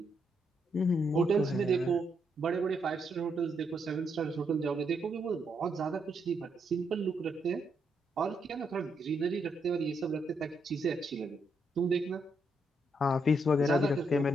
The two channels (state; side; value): normal; both; correlation 0.78